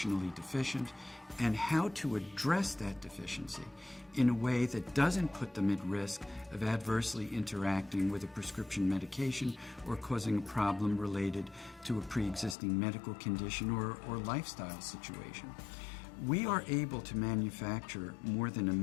deficient and how to address that deficiency in a way that doesn't put them at risk of adversely interacting with a prescription medication or causing a problem related to a pre-existing medical condition or lifestyle situation. We are able to manufacture more than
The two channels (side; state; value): right; drops out; at 12.6 s